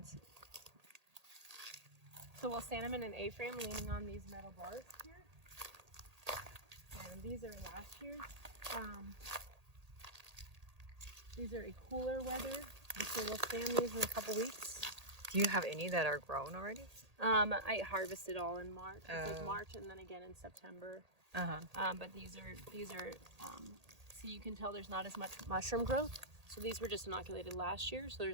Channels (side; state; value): left; late; 1.8 ms